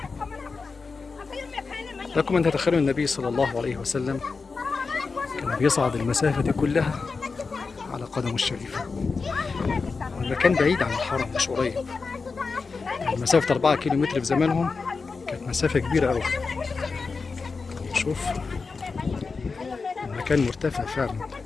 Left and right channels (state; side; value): quieter; right; 4.5 dB